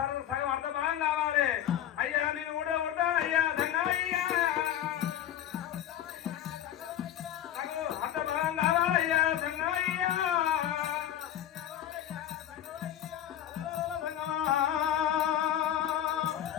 సగం అర్ధ భాగం కావాలి అయ్యా. నేను కూడా ఉంటాను అయ్యా సంగమయ్యా. నాకు అర్ధ భాగం కావాలయ్యా సంగమయ్యా.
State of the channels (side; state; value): right; quieter; 11.3 dB